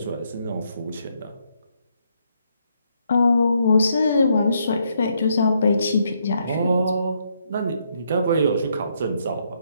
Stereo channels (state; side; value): inverted; both; correlation -0.75